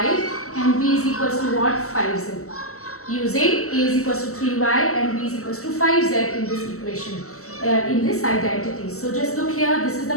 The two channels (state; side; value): late; right; 0.63 ms